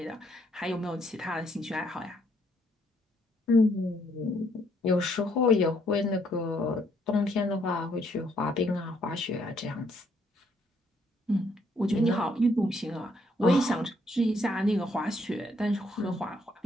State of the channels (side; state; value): both; normal; correlation 0.70